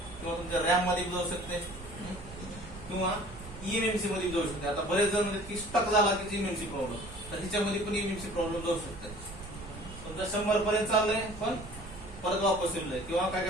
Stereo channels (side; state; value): right; noise; rumble, 14 dB below the sound